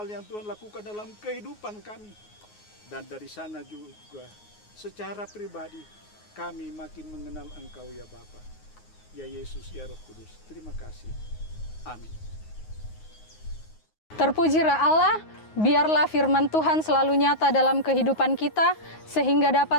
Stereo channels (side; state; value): right; late; 9.5 ms